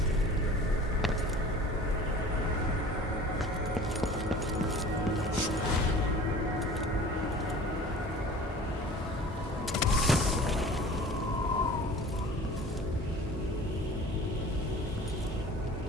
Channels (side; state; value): both; normal; correlation 0.43